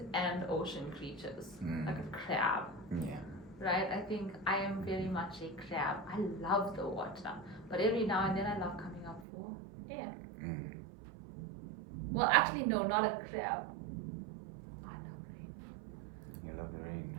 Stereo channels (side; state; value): left; drops out; at 9.2 s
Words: and ocean creatures, like a crab. Right? I think I am very much a crab. I love the water, but every now and then I love coming up for air. Well, actually, no, not a crab. I love rain. You love the rain.